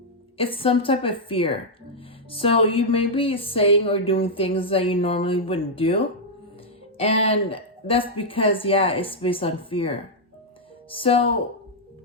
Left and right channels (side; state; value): both; normal; correlation -0.05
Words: it's some type of fear. So you may be saying or doing things that you normally wouldn't do. And that's because, yeah, it's based on fear. So,